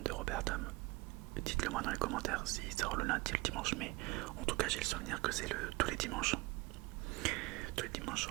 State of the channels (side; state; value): left; quieter; 22.8 dB